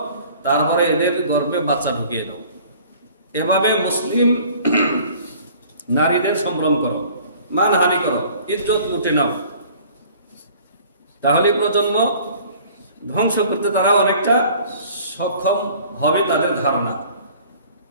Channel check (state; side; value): inverted; both; correlation -0.51